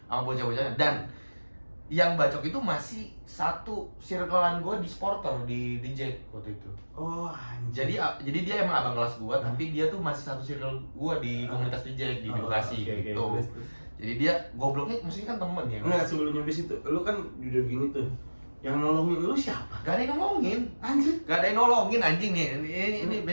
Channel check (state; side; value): inverted; both; correlation -1.00